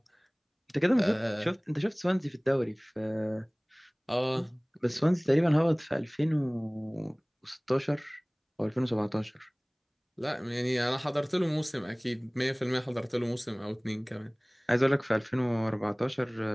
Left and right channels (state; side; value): identical; both; correlation 1.00